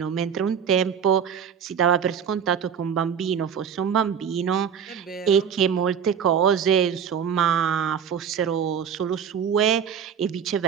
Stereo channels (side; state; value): left; quieter; 7.7 dB